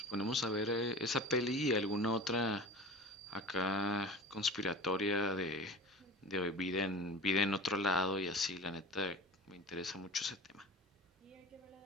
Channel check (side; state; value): both; normal; correlation 0.36